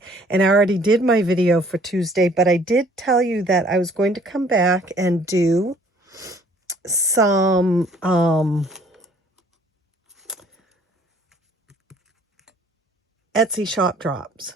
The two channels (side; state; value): both; normal; correlation 0.57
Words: and I already did my video for Tuesday, but I did tell you that I was going to come back and do some Etsy shop drops.